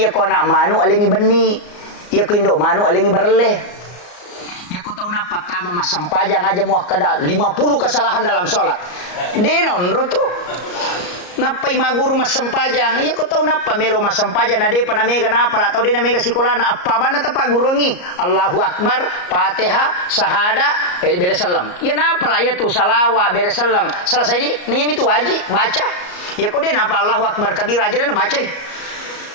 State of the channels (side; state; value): right; late; 34 ms